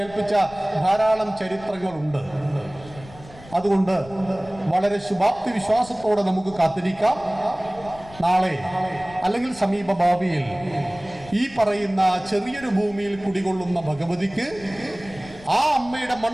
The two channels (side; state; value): left; noise; rumble, 20 dB below the sound